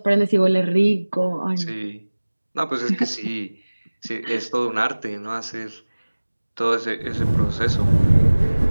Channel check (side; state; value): both; inverted; correlation -1.00